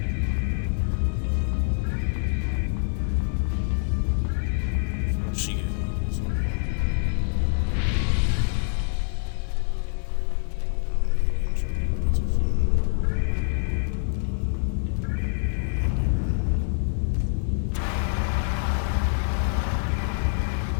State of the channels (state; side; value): silent; right; 59 dB below the other